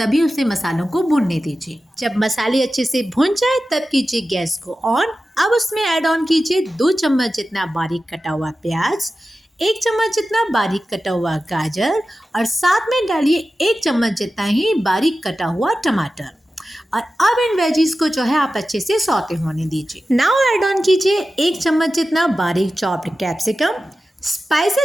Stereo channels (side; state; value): both; normal; correlation 0.94